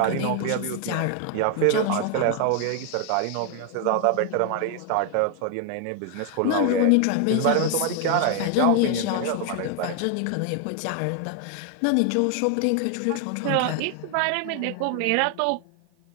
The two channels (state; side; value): different; both; correlation 0.00